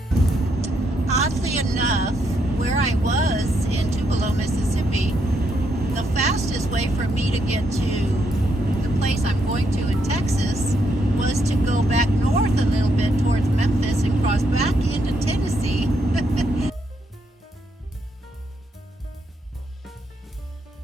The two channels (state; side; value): normal; both; correlation 0.77